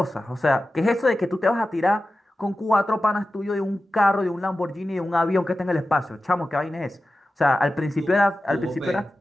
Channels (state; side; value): normal; both; correlation 0.93